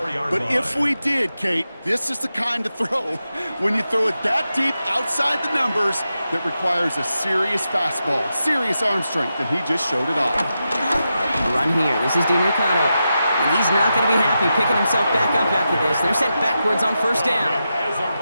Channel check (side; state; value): both; inverted; correlation -0.89